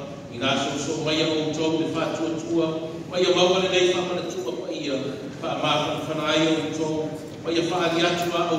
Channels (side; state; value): both; identical; correlation 1.00